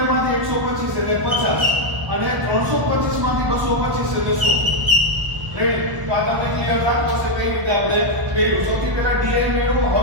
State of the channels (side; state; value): left; late; 1.0 ms